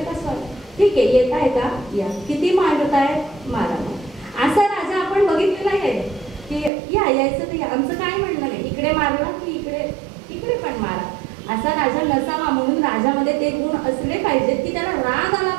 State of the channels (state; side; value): drops out; left; at 6.7 s